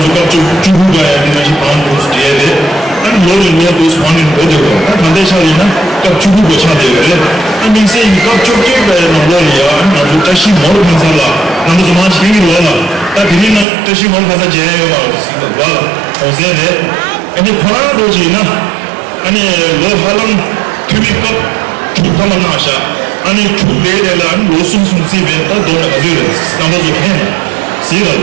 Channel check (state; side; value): drops out; left; at 13.7 s